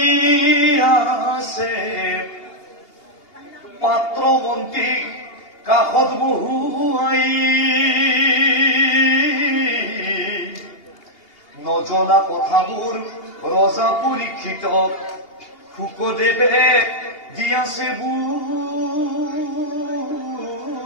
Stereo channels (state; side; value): late; right; 2.8 ms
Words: আছে পাত্ৰ মন্ত্ৰীক কাষত বহুৱাই নজনা কথাবোৰ ৰজা পৰীক্ষিতক শুকদেৱে দি আছে